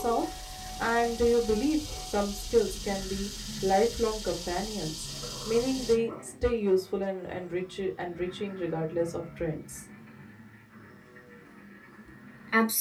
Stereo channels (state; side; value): identical; both; correlation 1.00